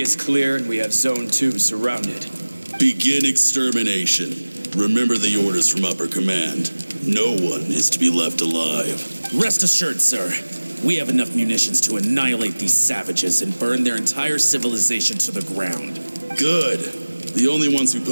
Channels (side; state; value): both; inverted; correlation -1.00